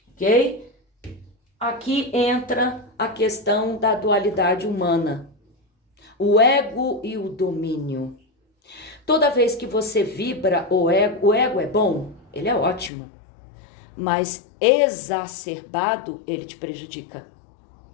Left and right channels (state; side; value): drops out; right; at 12.9 s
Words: Ok? Aqui entra a questão da dualidade humana. O ego e o domínio. Toda vez que você vibra o ego é bom, ele é ótimo, mas exacerbado ele te prejudica.